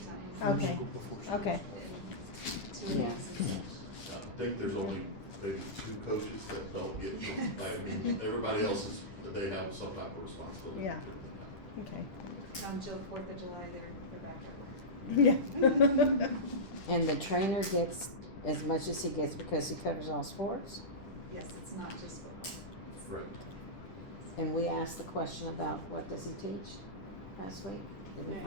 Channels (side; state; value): right; late; 10 ms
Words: Okay. School before school. Okay, In 2 Yeah. weeks. I think there's only maybe 2 coaches that don't get, I mean, everybody else is, they have some type of responsibility. Yeah. okay. Until 4th of July, they're back up. Yeah. And the trainer gets as much as he gets because he covers all sports? Yes, it's not just football. Correct. And we asked the question about what does he teach last week? Did we